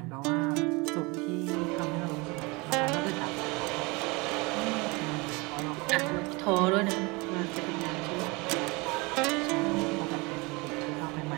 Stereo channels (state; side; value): quieter; left; 26.3 dB